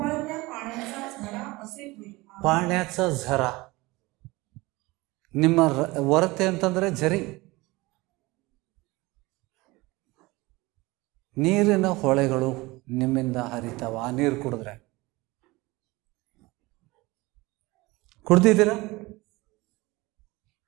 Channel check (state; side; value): quieter; left; 21.8 dB